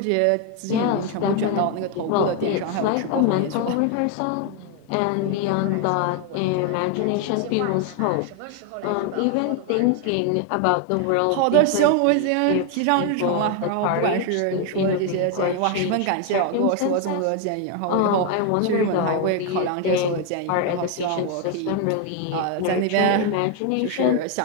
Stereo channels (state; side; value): different; both; correlation 0.01